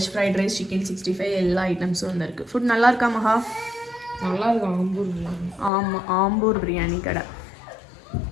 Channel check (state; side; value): drops out; right; at 5.7 s